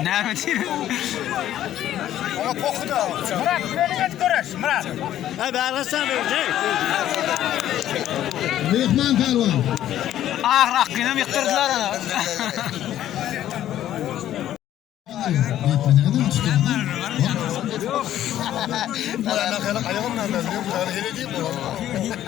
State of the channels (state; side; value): quieter; right; 12.2 dB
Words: Ne mi diyeyim? Ona poku da. Murat, beni et görüş. Murat. Hay be arkadaşlar şey. Mehman pelvan. Ah rakkını yıktırdılar ana. Ne kadar tutuyor?